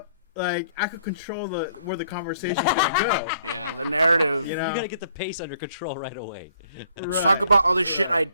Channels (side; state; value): both; inverted; correlation -0.64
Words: like I could control where the conversation's gonna go. Yeah, the narrative. You know, You gotta get the pace under control right away. Let's talk about all the shit I